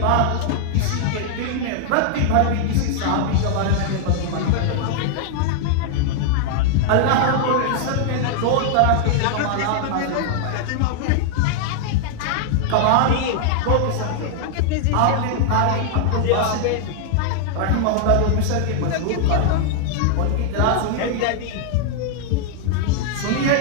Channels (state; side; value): different; both; correlation 0.00